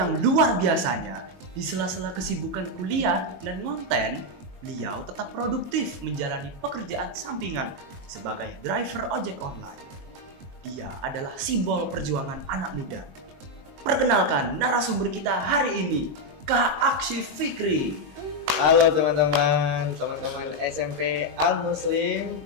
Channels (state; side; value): late; left; 22 ms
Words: luar biasanya, di sela-sela kesibukan kuliah dan konten, beliau tetap produktif menjalani pekerjaan sampingan sebagai driver ojek online. Dia adalah simbol perjuangan anak muda. Perkenalkan narasumber kita hari ini, Kak Akshif Fikri. Halo teman-teman SMP Al Muslim.